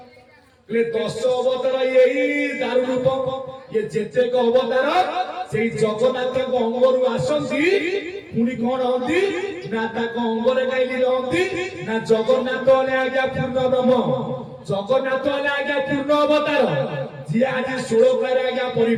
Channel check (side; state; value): both; identical; correlation 1.00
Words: 10 अवतार यही दारु रूप ये जेते को अवतार से जगन्नाथ को अंगरु आसंती पुणी कौन हंती ना ताको अंगरे गाइली रहंती ना जगन्नाथ ने आज्ञा पूर्ण ब्रह्म जगन्नाथ ने आज्ञा पूर्ण अवतार जी आज 16 आज्ञा